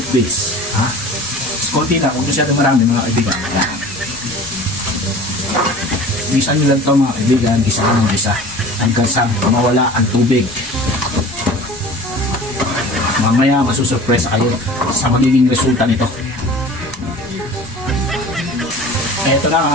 base. Konti na, kung masyadong marami mga kaibigan. Gisa nyo lang ito mga kaibigan, gisa ka ng gisa hanggang sa mawala ang tubig. Mamaya masusurpresa kayo sa magiging resulta nito. Ito na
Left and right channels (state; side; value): normal; both; correlation 0.41